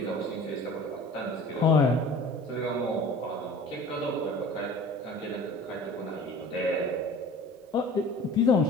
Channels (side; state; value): both; normal; correlation 0.43